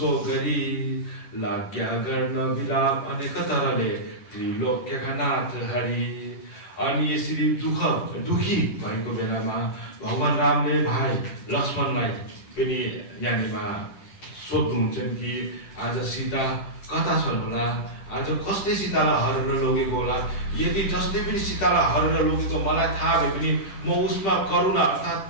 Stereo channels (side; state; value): right; late; 10 ms